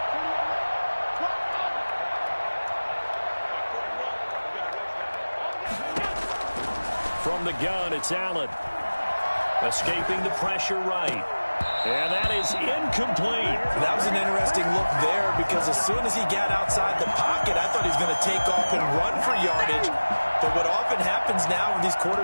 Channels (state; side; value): inverted; both; correlation -1.00